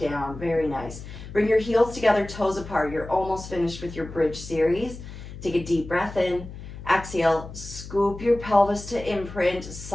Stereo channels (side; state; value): left; noise; hum, 13 dB below the sound